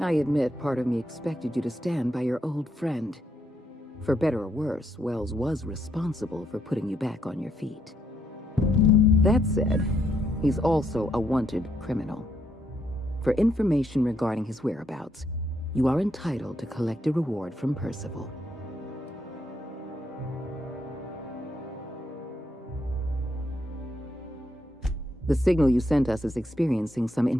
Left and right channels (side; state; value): both; normal; correlation 0.76